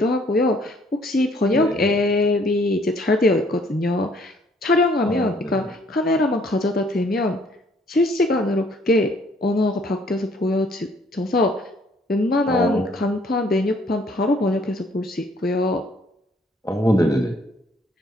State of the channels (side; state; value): both; normal; correlation 0.62